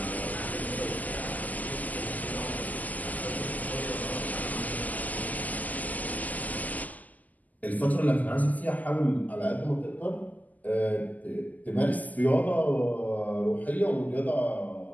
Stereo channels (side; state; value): right; late; 0.079 ms